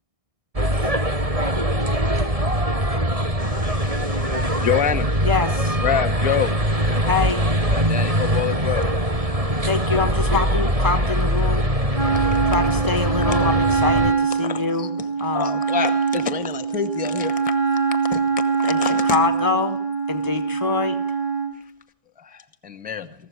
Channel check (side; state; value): left; late; 1.6 ms